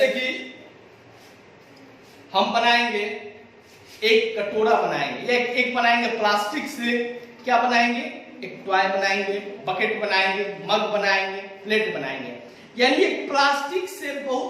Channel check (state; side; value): identical; both; correlation 1.00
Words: कि हम बनाएंगे एक कटोरा बनाएंगे, एक बनाएंगे प्लास्टिक से, क्या बनाएंगे, एक टॉय बनाएंगे, बकेट बनाएंगे, मग बनाएंगे, प्लेट बनाएंगे। यानी एक प्लास्टिक से